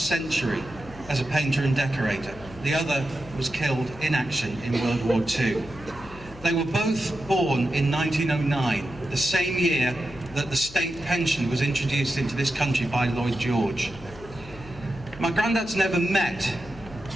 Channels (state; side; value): noise; left; hum, 18 dB below the sound